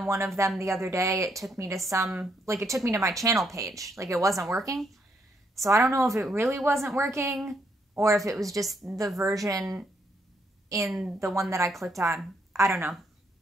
one of them the other day, it took me to it took me to my channel page. Like, it wasn't working. So I don't know if it really wasn't working or if it was just the version in the one that I clicked on. I don't know.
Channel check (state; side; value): normal; both; correlation 0.74